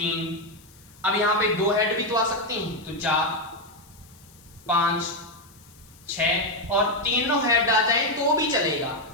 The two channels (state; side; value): noise; left; hiss, 26 dB below the sound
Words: अब यहाँ पे 2 हेड भी तो आ सकते हैं, तो 4, 5, 6, और तीनों हेड आ जाए तो भी चलेगा,